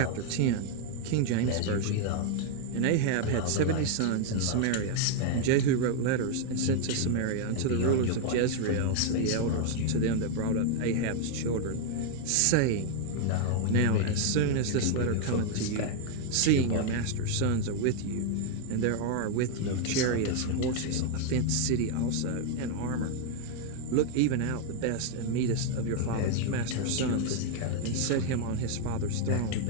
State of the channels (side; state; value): both; different; correlation 0.00